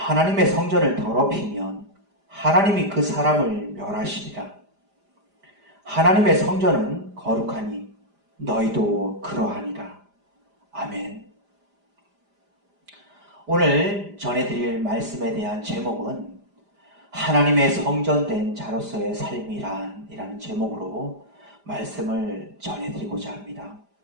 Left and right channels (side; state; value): left; late; 5.0 ms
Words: 성전을 더럽히면 하나님이 그 사람을 멸하시리라. 하나님의 성전은 거룩하니 너희도 그러하니라. 아멘. 오늘 전해드릴 말씀에 대한 제목은 하나님의 성전된 자로서의 삶이란이라는 제목으로 말씀을 전해드리고자 합니다.